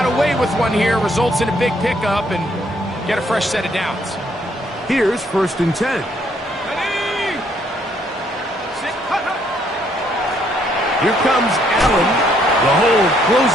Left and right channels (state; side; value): normal; both; correlation 0.69